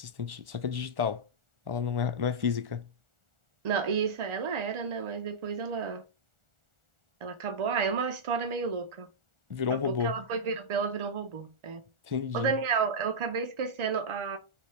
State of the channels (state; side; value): late; left; 1.4 ms